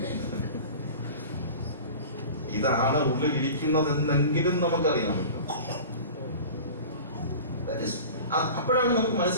ഇതാണ് ഉള്ളിൽ ഇരിക്കുന്നതെന്നെങ്കിലും നമുക്കറിയാമല്ലോ. അപ്പോഴാണ് നമുക്ക്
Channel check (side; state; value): both; inverted; correlation -0.37